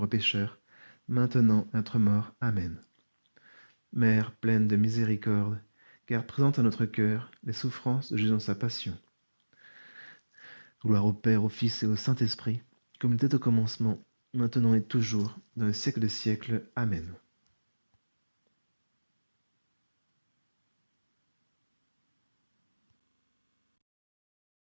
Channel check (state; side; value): inverted; both; correlation -1.00